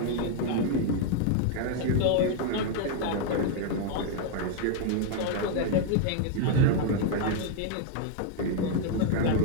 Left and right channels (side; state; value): both; different; correlation 0.00